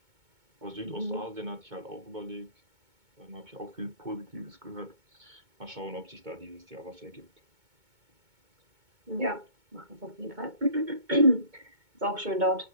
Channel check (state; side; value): late; left; 2.2 ms